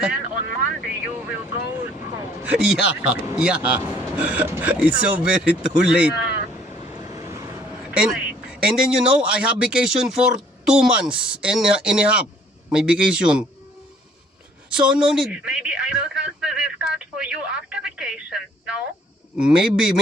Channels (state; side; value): normal; both; correlation 0.60